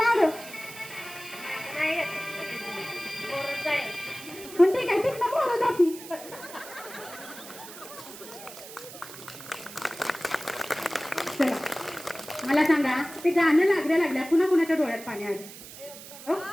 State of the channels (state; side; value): noise; right; hiss, 15 dB below the sound